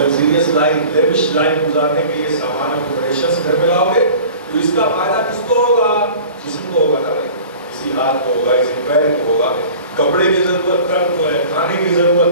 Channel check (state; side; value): inverted; both; correlation -0.42